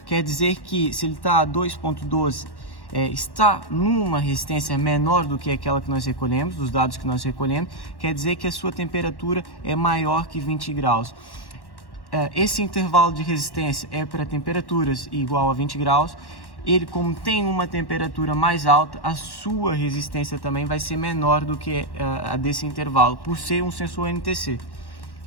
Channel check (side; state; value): right; late; 1.1 ms